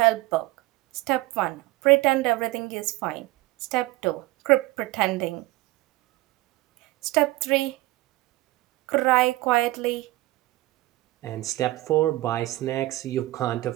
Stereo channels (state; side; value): quieter; left; 19.0 dB